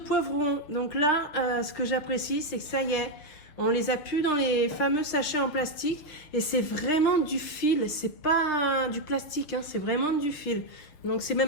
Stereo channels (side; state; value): right; late; 6.6 ms